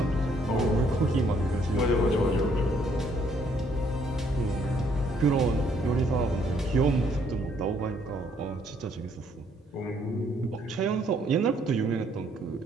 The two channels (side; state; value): both; normal; correlation 0.67